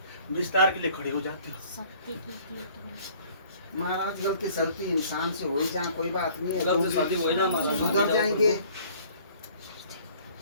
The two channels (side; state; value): both; inverted; correlation -0.54